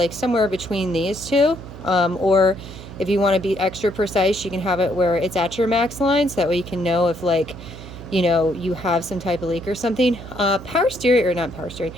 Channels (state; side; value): noise; right; hum, 14 dB below the sound